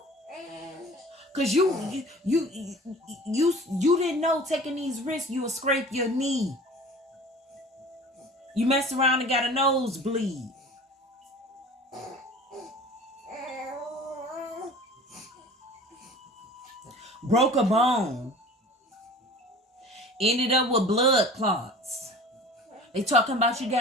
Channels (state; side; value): normal; both; correlation 0.42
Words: Because you didn't know taking these risks, you would scrape your knee. You mess around and got a nosebleed. Broke a bone. Ended up with blood clots. They talking about you